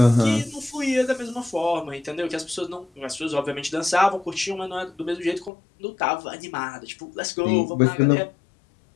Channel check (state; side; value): drops out; right; at 5.5 s